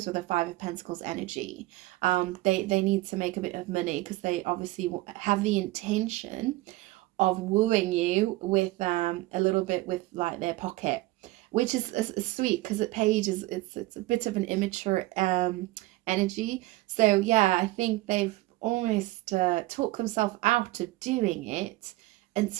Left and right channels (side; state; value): left; quieter; 19.3 dB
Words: with a Five of Pentacles energy. They need to make a bit of money, because they obviously have the intention of wooing you with a little bit with like their pocket, which is sweet, because at Page is it's a bit of an immature energy. So yeah, I think they've almost talked themselves out of doing it